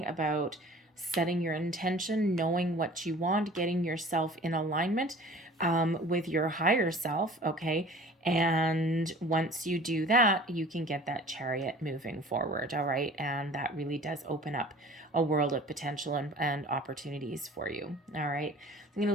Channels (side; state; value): both; normal; correlation 0.46